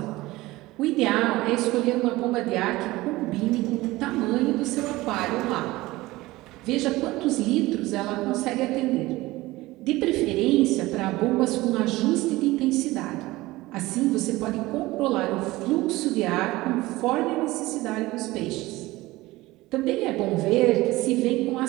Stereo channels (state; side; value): quieter; left; 19.2 dB